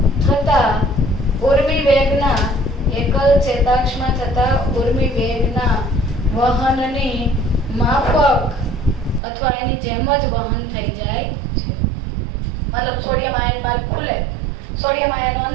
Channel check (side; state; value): left; drops out; at 9.2 s